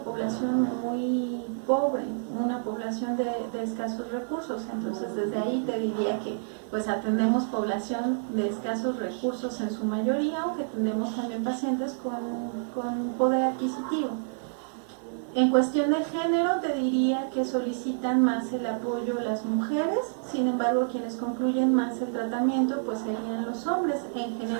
muy pobre, una población de escasos recursos. Entonces, desde ahí te diría que pues atendemos población de escasos recursos en su mayoría, aunque atendemos también pacientes con poder adquisitivo. En cuestión de género, te diría que solicitan más el apoyo las mujeres, sin embargo, quienes concluyen más el tratamiento pues serían los hombres. En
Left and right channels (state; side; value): silent; left; 59 dB below the other